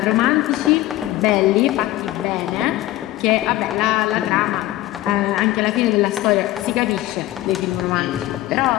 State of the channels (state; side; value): quieter; right; 16.1 dB